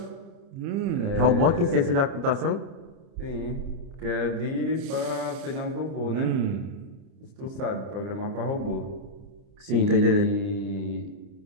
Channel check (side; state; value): left; late; 30 ms